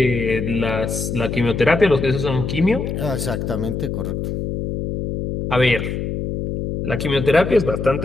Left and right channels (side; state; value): left; noise; hum, 4 dB below the sound